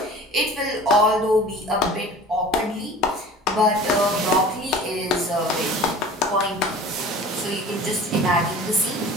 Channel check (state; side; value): normal; both; correlation 0.42